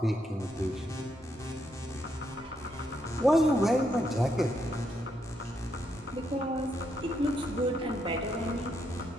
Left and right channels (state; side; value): normal; both; correlation 0.78